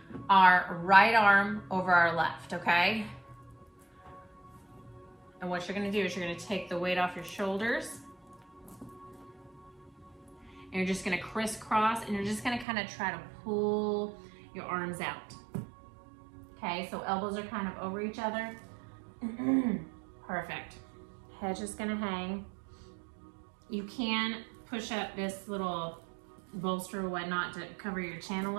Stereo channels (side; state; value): left; drops out; at 12.7 s